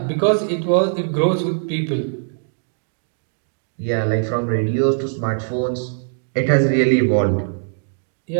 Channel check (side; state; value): left; silent; digital silence